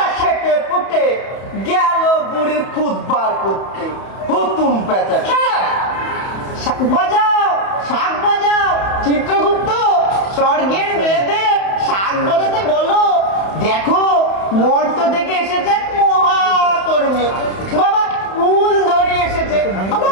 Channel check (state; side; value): late; right; 31 ms